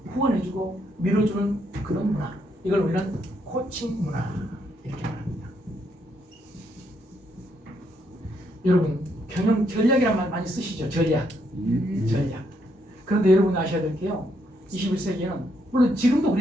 후원해주고 밀어주는 그런 문화. 이걸 우리는 코칭 문화 이렇게 말합니다. 여러분 경영 전략이란 말 많이 쓰시죠. 전략. 그런데 여러분 아셔야 될 게요. 21세기에는 물론 지금도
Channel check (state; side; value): normal; both; correlation 0.75